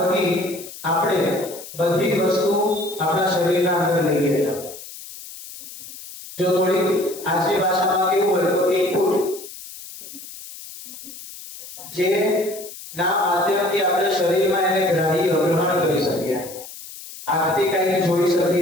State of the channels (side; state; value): left; noise; hiss, 14 dB below the sound